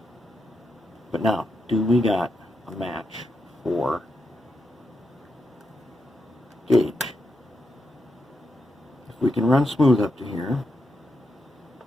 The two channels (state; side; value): normal; both; correlation 0.84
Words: But now, do we got a match for gauge? If we can run smooth up to here,